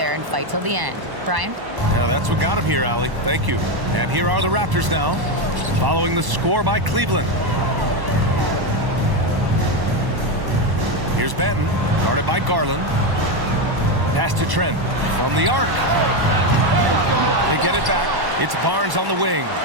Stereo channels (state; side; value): late; left; 1.1 ms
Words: and fight till the end. Brian? Yeah, that's what got him here, Allie. Thank you. And here are the Raptors now, following the score by Cleveland. Here's Benton, guarded by Garland. Pass to Trent from the arc. They get it back. It's Barnes on the wing.